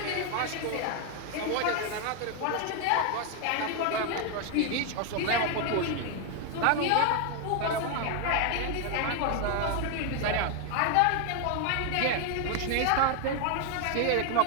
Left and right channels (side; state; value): both; different; correlation 0.01